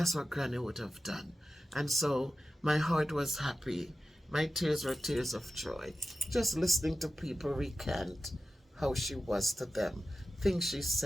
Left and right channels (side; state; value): both; normal; correlation 0.94